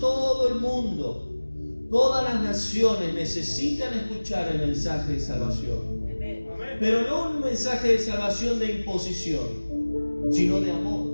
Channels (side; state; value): both; inverted; correlation -1.00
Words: el mundo, todas las naciones necesitan escuchar el mensaje de salvación. Pero no un mensaje de salvación de imposición, sino de